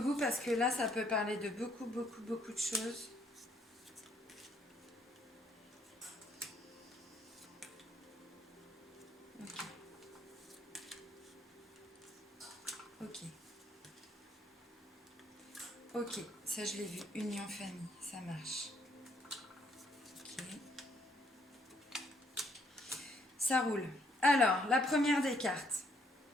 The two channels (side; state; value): both; normal; correlation 0.68